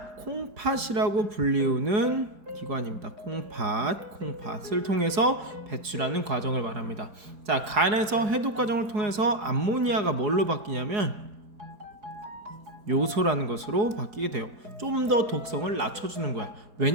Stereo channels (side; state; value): left; late; 4.8 ms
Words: 콩팥이라고 불리우는 기관입니다. 콩팥을 통해서 배출하는 과정을 말합니다. 자, 간에서 해독 과정을 통해서 암모니아가 뭘로 바뀌냐면 요소라는 것으로 바뀌게 돼요. 좀 더 독성을 낮춰주는 거야.